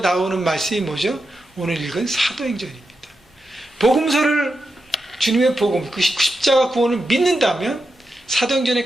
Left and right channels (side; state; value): both; normal; correlation 0.88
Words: 말씀이 뭐죠? 오늘 읽은 사도행전입니다. 복음서를 주님의 복음, 그 십자가 구원을 믿는다면 사도행전의